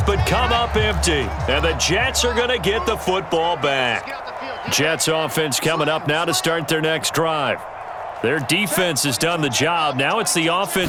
but come up empty. And the Jets are going to get the football back. Jets offense coming up now to start their next drive. Their defense has done the job. Now it's the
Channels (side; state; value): both; identical; correlation 1.00